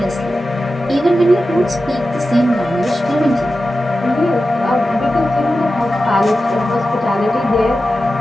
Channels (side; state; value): both; normal; correlation 0.92